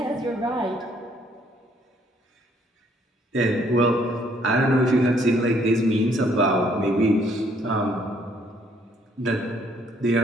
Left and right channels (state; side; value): normal; both; correlation 0.65